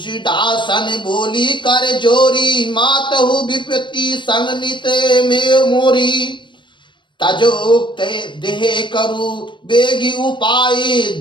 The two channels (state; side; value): late; right; 0.23 ms